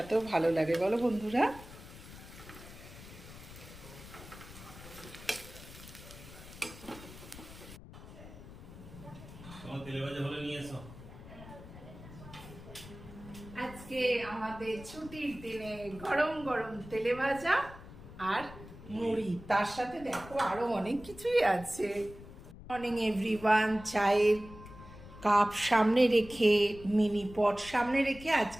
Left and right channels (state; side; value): noise; left; rumble, 16 dB below the sound